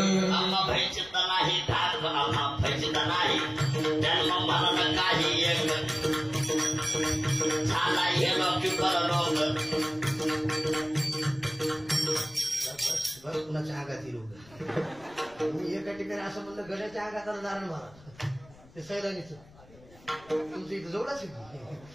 आम्हा भयचित नाही ठाक आम्हा भयचित नाही जन्म मरण काही एक झाला हे लोक परलोक. बरं कुणाच्या आगात लोक मी एका ठिकाणी असं म्हणलं गड्याच्या आगात आलं नारायण महाराज ते सैलानीच तुमचं इथं जवळच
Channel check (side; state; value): left; noise; rumble, 24 dB below the sound